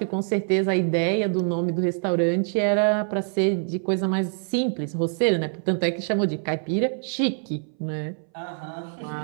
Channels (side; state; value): left; silent; 60 dB below the other